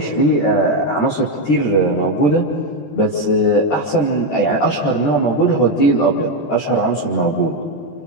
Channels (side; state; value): right; late; 14 ms